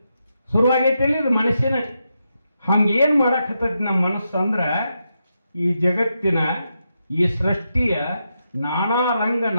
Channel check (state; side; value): inverted; both; correlation -0.84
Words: ಶುರುವಾಗೈತಿ ಇದು ಮನುಷ್ಯನ ಹಂಗೇನು ಮಾಡಕತ್ತೈತಿ ನಮ್ಮ ಮನಸ್ಸು ಅಂದ್ರೆ ಈ ಜಗತ್ತಿನ ಈ ಸೃಷ್ಟಿಯ ನಾನಾ ರಂಗ